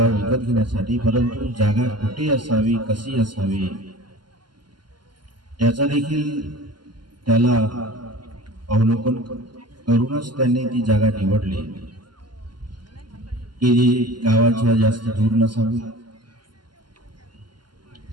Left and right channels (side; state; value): left; late; 0.71 ms